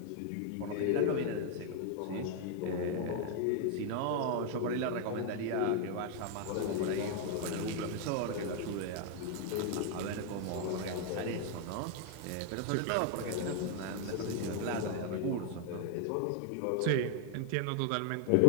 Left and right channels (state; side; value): different; both; correlation 0.00